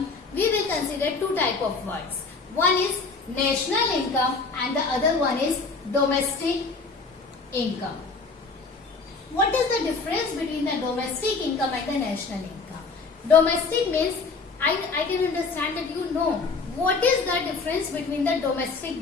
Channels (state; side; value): quieter; right; 4.3 dB